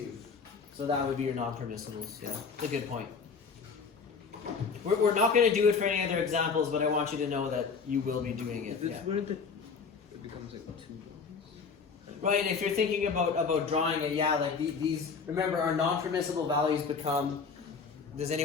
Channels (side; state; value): right; quieter; 5.4 dB